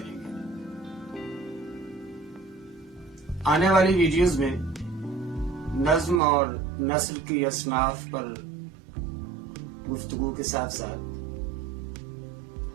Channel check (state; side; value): drops out; left; at 6.2 s